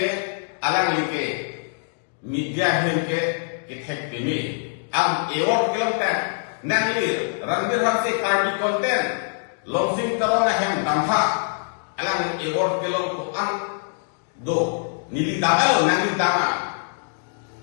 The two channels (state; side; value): silent; right; digital silence